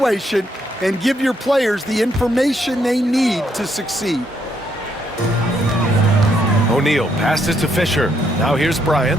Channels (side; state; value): both; normal; correlation 0.74